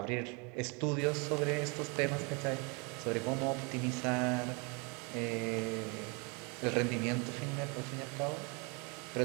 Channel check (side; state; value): left; quieter; 31.9 dB